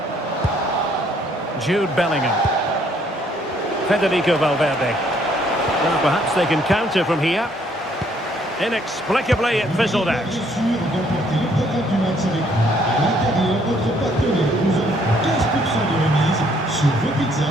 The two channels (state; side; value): normal; both; correlation 0.66